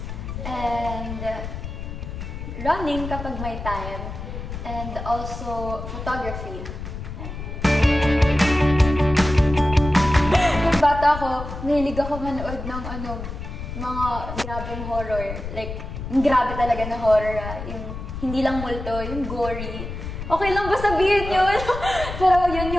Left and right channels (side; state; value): left; noise; rumble, 8 dB below the sound